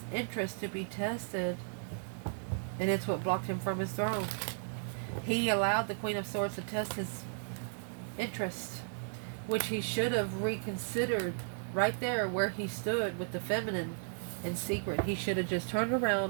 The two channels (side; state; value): left; silent; 55 dB below the other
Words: interest to be tested, and it's what blocked him from his throne. He allowed the Queen of Swords to test his interest, which he should have reconsidered right there where he stood with the feminine in secret. He should have just turned